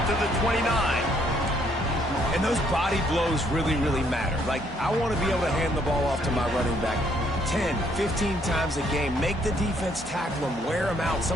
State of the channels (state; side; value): normal; both; correlation 0.68